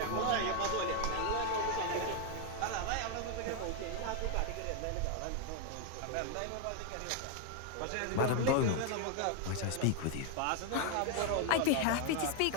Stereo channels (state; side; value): different; both; correlation 0.01